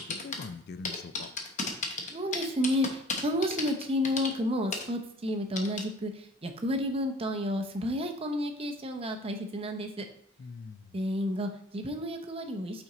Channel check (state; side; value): normal; both; correlation 0.50